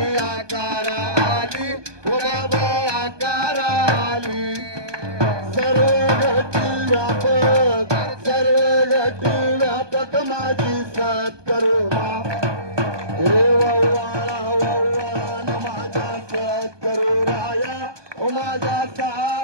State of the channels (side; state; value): left; late; 1.2 ms